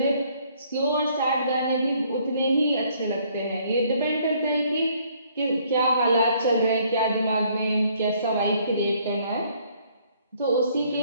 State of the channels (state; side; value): inverted; both; correlation -0.64